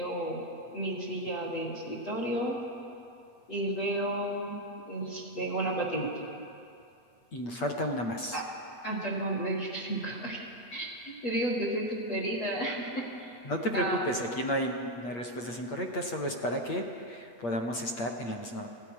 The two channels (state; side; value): late; right; 8.5 ms